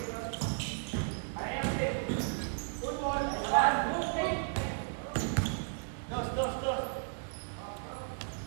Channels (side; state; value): left; silent; digital silence